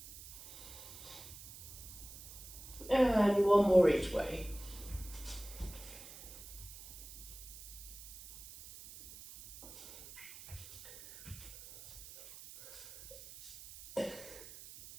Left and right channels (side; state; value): right; noise; hiss, 15 dB below the sound